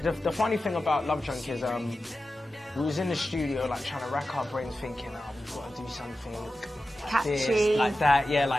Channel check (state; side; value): normal; both; correlation 0.93